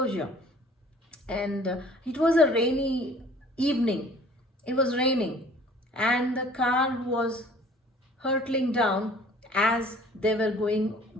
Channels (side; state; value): both; normal; correlation 0.52